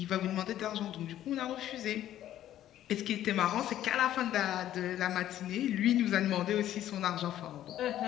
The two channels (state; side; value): quieter; right; 12.3 dB